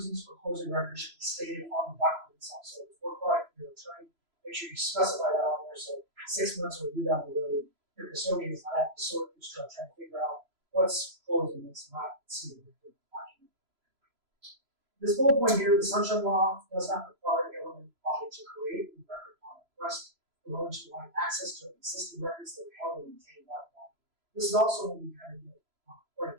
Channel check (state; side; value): late; left; 3.0 ms